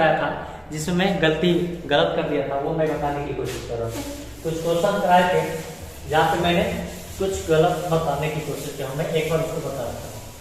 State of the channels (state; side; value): identical; both; correlation 1.00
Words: था जिसमें मैं गलत कर दिया था, वो मैं बताने की कोशिश कर रहा था। कुछ क्वेश्चन कराए थे जहाँ पे मैंने कुछ गलत बताने की कोशिश किया, मैं एक बार उसको बता रहा था,